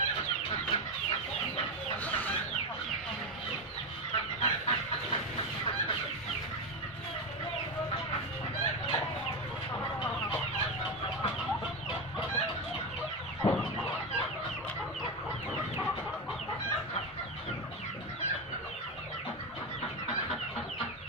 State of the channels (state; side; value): normal; both; correlation 0.14